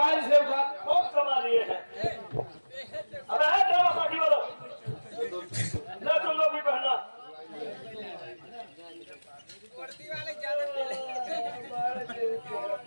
से उठा बहुत कमा लिए हैं। अरे है ड्रामा पार्टी वालों, ना तुम लोग भी पहनना।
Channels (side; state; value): both; inverted; correlation -1.00